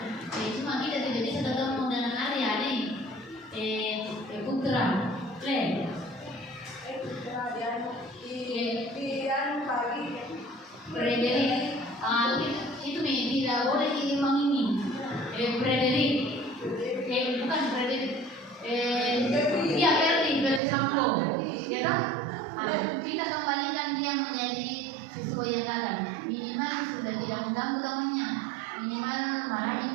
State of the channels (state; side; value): drops out; left; at 20.6 s